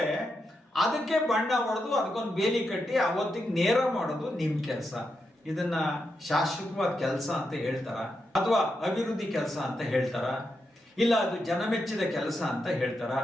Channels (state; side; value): normal; both; correlation 0.85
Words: ಅದಕ್ಕೆ ಬಣ್ಣ ಹೊಡೆದು ಅದಕ್ಕೊಂದು ಬೇಲಿ ಕಟ್ಟಿ ಅವತ್ತಿಗೆ ನೇರ ಮಾಡೋದು ನಿಮ್ ಕೆಲಸ. ಇದನ್ನ ಶಾಶ್ವತವಾದ ಕೆಲಸ ಅಂತ ಹೇಳ್ತಾರ, ಅಥವಾ ಅಭಿವೃದ್ಧಿ ಕೆಲಸ ಅಂತ ಹೇಳ್ತಾರ, ಇಲ್ಲ ಅದು ಜನಮೆಚ್ಚಿದ ಕೆಲಸ ಅಂತ ಹೇಳ್ತಾರ,